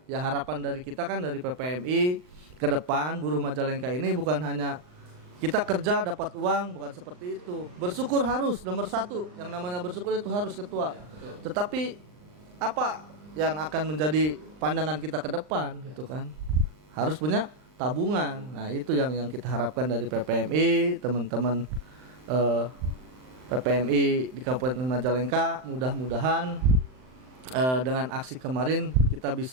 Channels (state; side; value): late; left; 39 ms